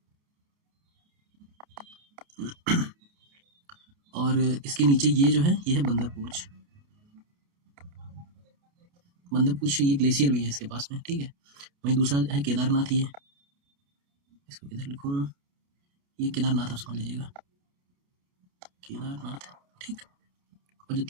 और इसके नीचे ये जो है ये है बंदरपूछ। बंदरपूछ ये ग्लेशियर भी है इसके पास में, ठीक है। वहीं दूसरा है केदारनाथ, ये इसको किधर लिखूं, ये केदारनाथ आप समझ लीजिएगा, केदारनाथ, ठीक। और जो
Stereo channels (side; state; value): left; late; 28 ms